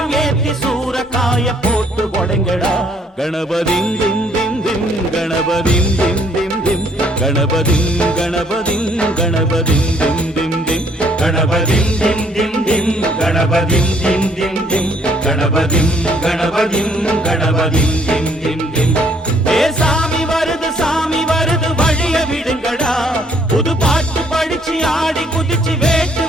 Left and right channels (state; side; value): normal; both; correlation 0.65